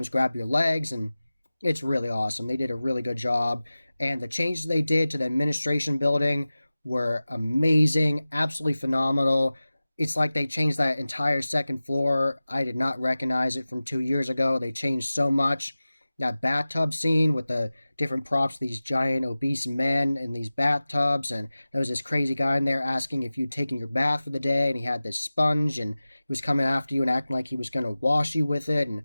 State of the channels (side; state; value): both; inverted; correlation -0.97